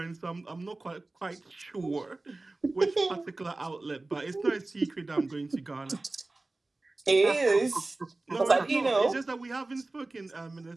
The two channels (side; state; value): left; quieter; 3.1 dB